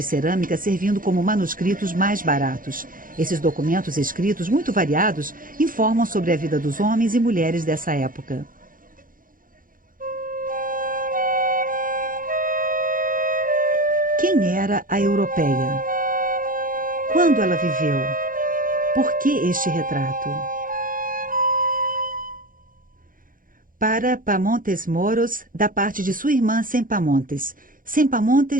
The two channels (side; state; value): left; late; 0.40 ms